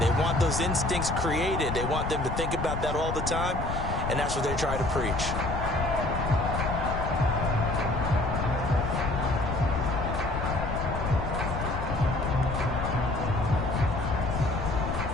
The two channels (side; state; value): left; noise; rumble, 4 dB below the sound